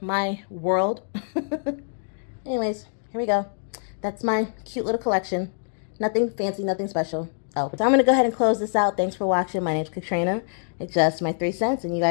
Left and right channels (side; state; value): right; silent; digital silence